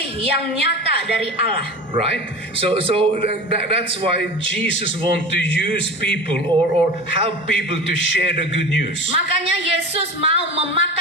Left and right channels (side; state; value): both; normal; correlation 0.32